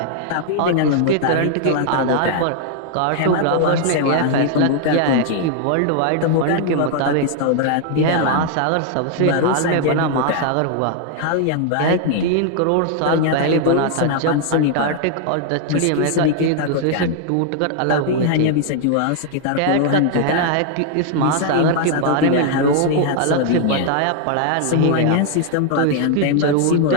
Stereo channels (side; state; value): both; different; correlation 0.00